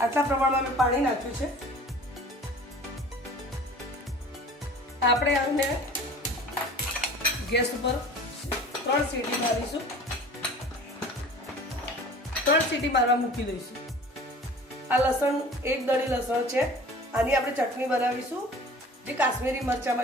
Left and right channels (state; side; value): normal; both; correlation 0.44